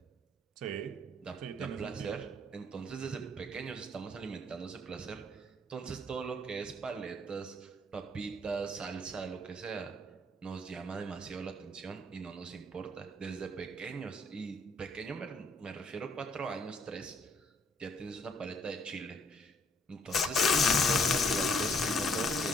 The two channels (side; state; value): both; normal; correlation 0.64